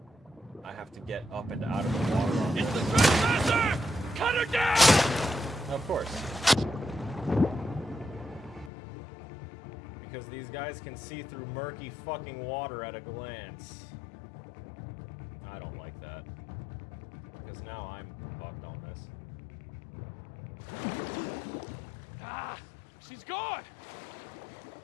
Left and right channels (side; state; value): right; drops out; at 8.7 s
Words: I have to get up and out of the water. It's the trespasser! Cut her down! Of course. Because these guys can see through murky fucking water at a glance. I don't like that. Because now I'm fucked on this. Ah! She's gone!